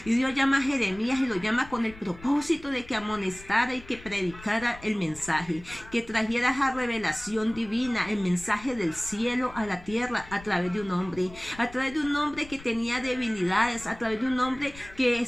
Y Dios llama a Jeremías y lo llama con el propósito de que amonestara y que predicara el mensaje, que trajera esa revelación divina, el mensaje del cielo a la tierra a través de un hombre que tenía debilidades, a través de un hombre que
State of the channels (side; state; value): left; noise; rumble, 18 dB below the sound